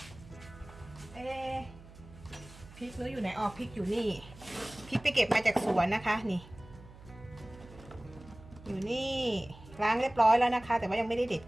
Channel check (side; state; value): right; noise; hum, 19 dB below the sound